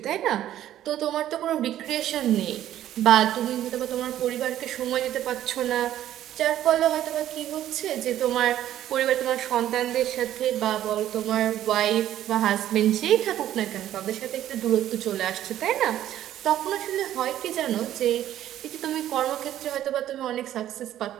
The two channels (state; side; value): quieter; left; 12.2 dB